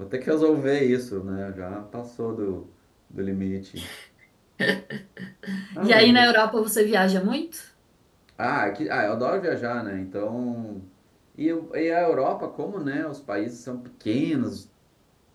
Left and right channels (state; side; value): identical; both; correlation 1.00